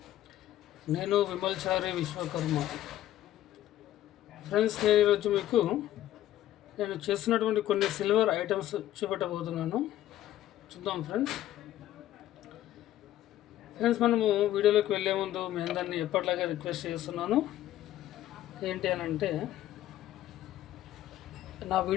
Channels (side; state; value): right; quieter; 13.2 dB